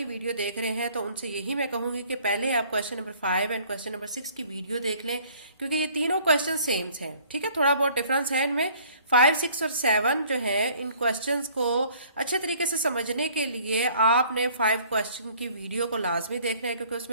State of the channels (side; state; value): both; inverted; correlation -0.56